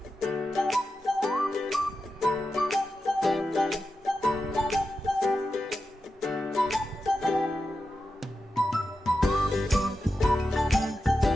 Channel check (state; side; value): normal; both; correlation 0.90